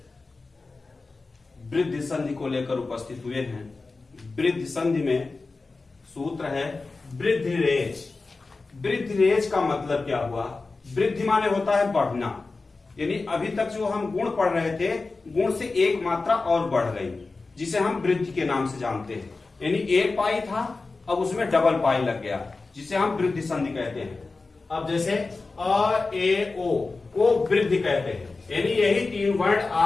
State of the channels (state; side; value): quieter; right; 3.8 dB